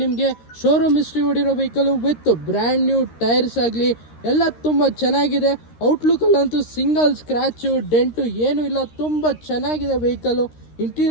ನಿಮಗೆ. ಶೋರೂಮ್ ಹಿಸ್ಟ್ರಿ ಹೊಡಿರೋ vehicle with brand new tyres ಆಗಲಿ ಎಲ್ಲ ತುಂಬ ಚೆನ್ನಾಗಿದೆ. ಔಟ್ಲುಕ್ಕಲ್ಲಂತೂ ಸಿಂಗಲ್ ಸ್ಕ್ರ್ಯಾಚು ಡೆಂಟು ಏನೂ ಇಲ್ಲ, ತುಂಬ ಚೆನ್ನಾಗಿದೆ ವೆಹಿಕಲ್ಲು.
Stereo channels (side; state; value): right; late; 13 ms